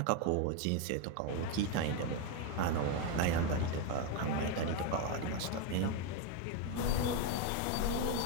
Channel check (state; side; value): different; both; correlation 0.02